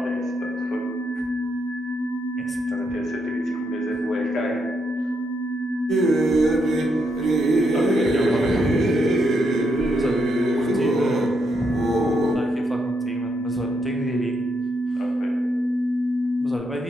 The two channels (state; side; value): normal; both; correlation 0.79